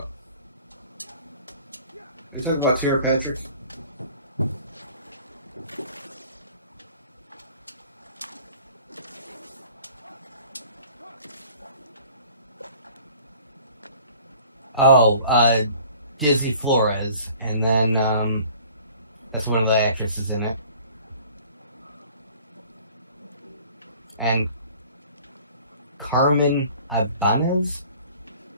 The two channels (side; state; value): both; inverted; correlation -0.51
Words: Are you talking about Tara Patrick? Oh, Dizzy Flores, and then that's one of the actresses in it. And Carmen Ibanez